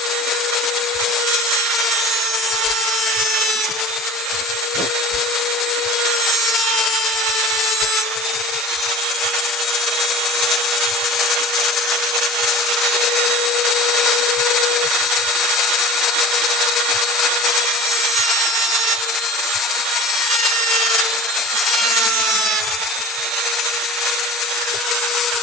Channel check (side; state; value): both; normal; correlation 0.41